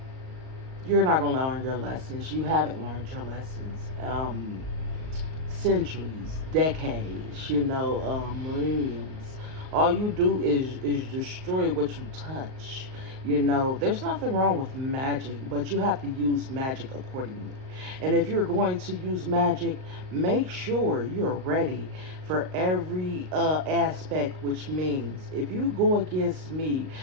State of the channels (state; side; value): late; left; 38 ms